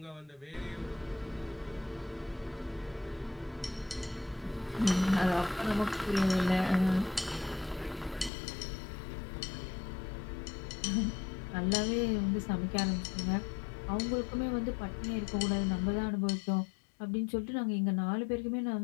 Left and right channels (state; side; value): drops out; right; at 8.3 s